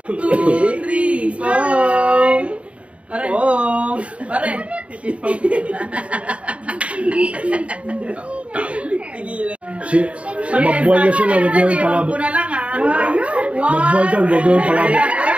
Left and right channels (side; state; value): left; late; 0.063 ms